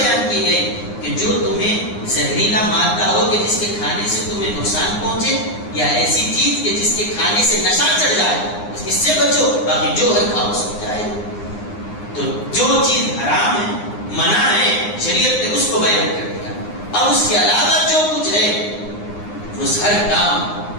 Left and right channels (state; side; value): late; right; 9.7 ms